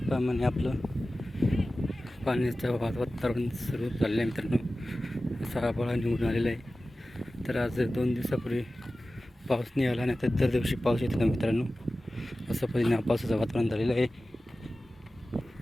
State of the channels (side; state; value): both; normal; correlation 0.95